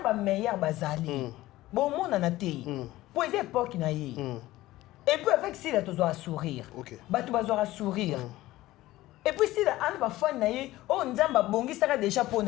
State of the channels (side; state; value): right; quieter; 16.9 dB